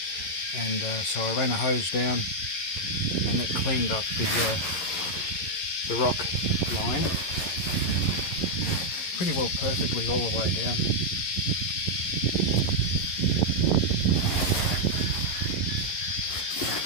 And so I ran a hose down, and that cleaned up the rock line pretty well perfectly all the way down.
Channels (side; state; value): right; late; 11 ms